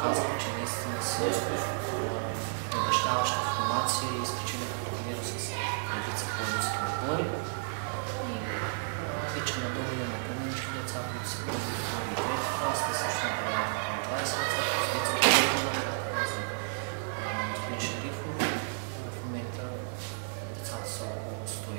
че наистина са обещаваща формация и изключително турнира с редица пловдивски отбори. И вече надолу имаме по-младички деца, които са първи, втори и трети клас, те също направят към 20 деца, които са за господин Шерифов. В момента децата са около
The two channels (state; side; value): silent; left; digital silence